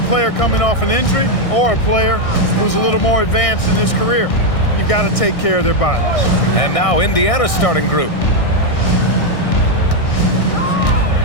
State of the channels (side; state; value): right; late; 1.6 ms